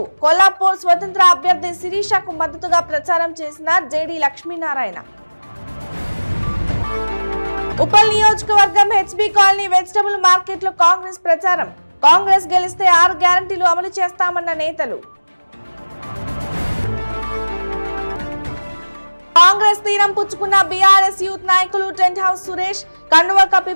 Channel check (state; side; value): inverted; both; correlation -1.00